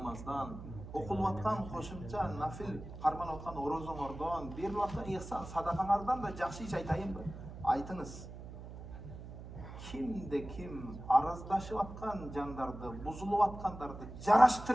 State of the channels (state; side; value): noise; right; hum, 12 dB below the sound